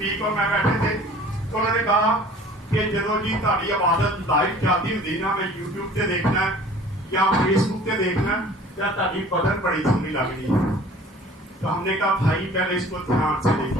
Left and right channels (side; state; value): both; normal; correlation 0.48